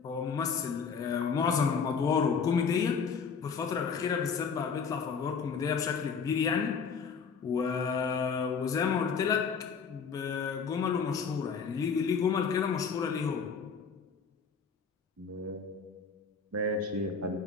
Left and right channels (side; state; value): right; quieter; 5.8 dB